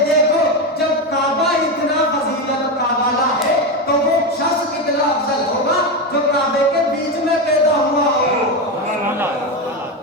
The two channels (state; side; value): normal; both; correlation 0.13